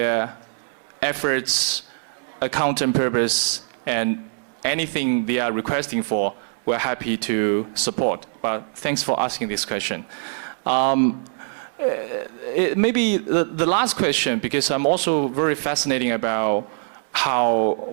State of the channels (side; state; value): left; silent; digital silence